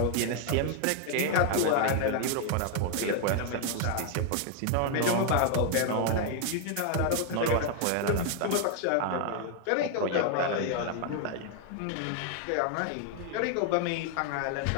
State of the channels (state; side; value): different; both; correlation 0.00